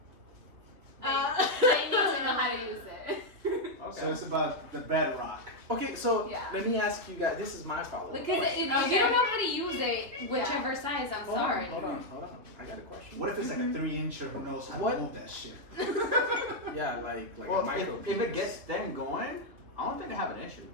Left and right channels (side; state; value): left; late; 3.2 ms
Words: they need to know how to use it. Okay. So it's about the bedrock. Okay, so Yeah. let me ask you guys. This is my follow-up Because question. if you don't know how to use it, whichever size, I'm Hold sorry. on. I got a question. What if it's like a 3-incher who knows how What? to move that shit? Yeah, like a Well, micro. if it gets them going, I don't think I have an issue.